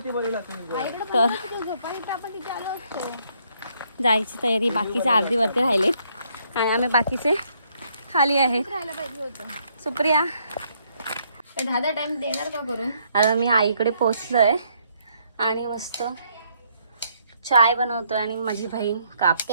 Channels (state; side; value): inverted; both; correlation -0.70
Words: झोपायला आपण तिथे आलो असतो. जायची तयारी. बाकीचे अर्धी वरती राहिले आणि आम्ही बाकीचे खाली आहेत. राहायला पाहिजे होतं. सुप्रिया दहा टाइम देणार का करून? आता मी आईकडे पोचलोय आणि मस्त चाय बनवतोय आणि माझी बहीण कापते